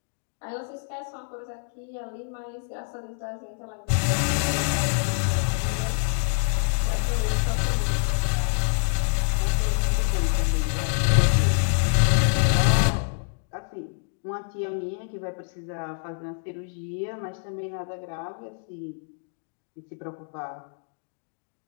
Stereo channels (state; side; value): silent; right; digital silence